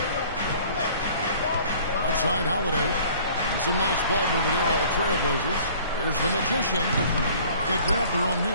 Outside Holiday. Some nice ball movement here by the Trailblazers. Here's the Magician. They grab their own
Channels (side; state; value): both; inverted; correlation -0.51